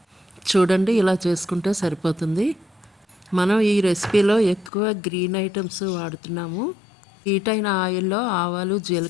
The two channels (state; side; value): drops out; right; at 4.7 s